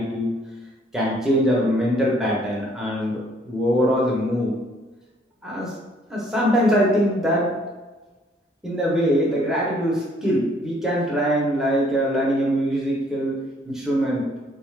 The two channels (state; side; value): normal; both; correlation 0.63